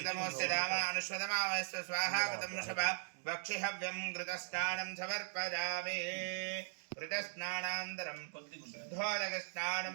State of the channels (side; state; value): left; silent; digital silence